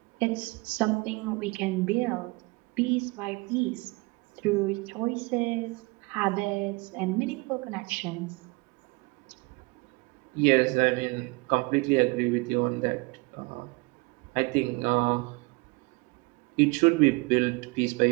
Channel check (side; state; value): left; quieter; 26.4 dB